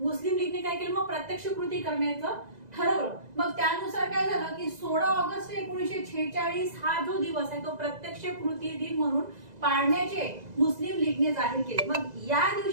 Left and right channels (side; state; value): left; late; 2.0 ms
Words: लीगने काय केलं, मग प्रत्यक्ष कृती करण्याचं ठरवलं। मग त्यानुसार काय झालं की 16 ऑगस्ट 1946 हा जो दिवस आहे तो प्रत्यक्ष कृती दिन म्हणून पाळण्याचे मुस्लिम लीगने जाहीर केले। मग या